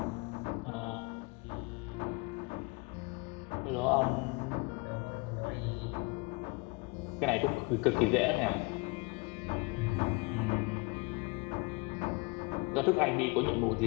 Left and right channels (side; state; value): right; quieter; 28.1 dB